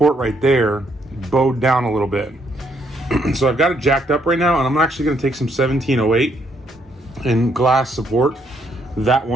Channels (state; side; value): normal; both; correlation 0.72